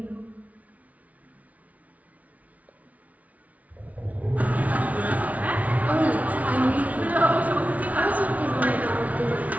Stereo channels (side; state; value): left; late; 0.069 ms